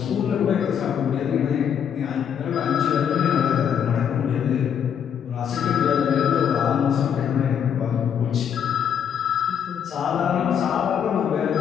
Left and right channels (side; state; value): right; quieter; 8.3 dB